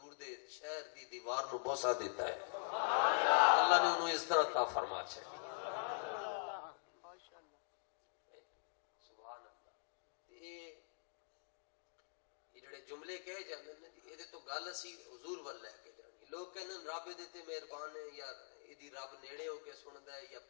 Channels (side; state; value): right; silent; digital silence